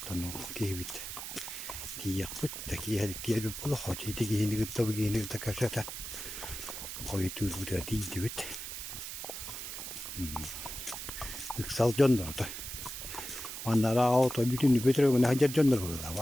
kibit. Tiyak put taki her kiyer pula hoci tigi ini kita begini kita kasatan. Kau itu sudah dijebit. Iksal jondor tuh. Onlara auto bütün götürüyor ne hacer jondor burada.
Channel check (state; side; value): noise; right; hiss, 7 dB below the sound